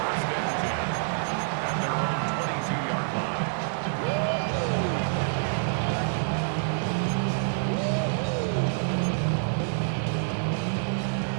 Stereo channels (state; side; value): silent; left; digital silence